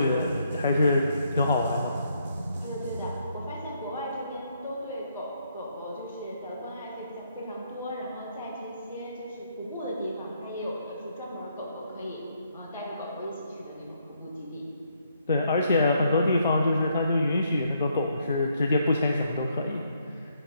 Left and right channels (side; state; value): both; inverted; correlation -0.73